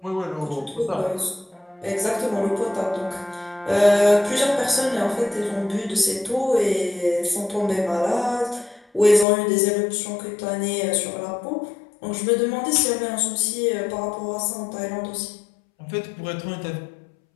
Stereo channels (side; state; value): right; drops out; at 9.2 s